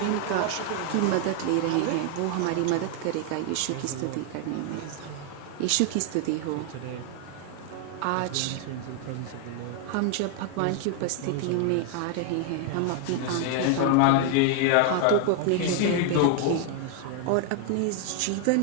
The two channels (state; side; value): different; both; correlation 0.00